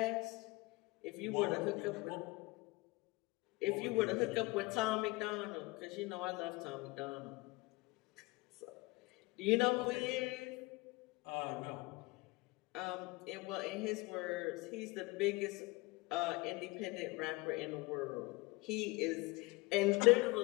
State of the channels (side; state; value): right; quieter; 23.8 dB